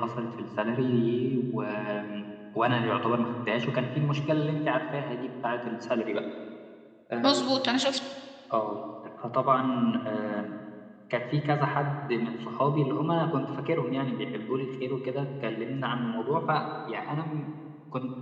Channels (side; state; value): both; identical; correlation 1.00